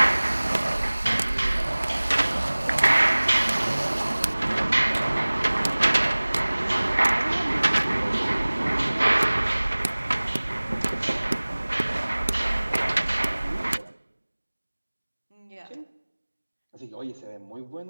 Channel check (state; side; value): inverted; both; correlation -1.00